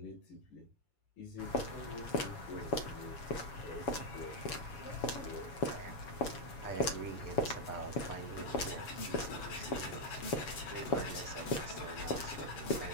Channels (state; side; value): late; right; 7.2 ms